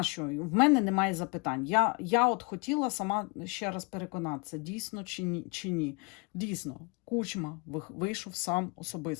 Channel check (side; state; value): right; quieter; 31.0 dB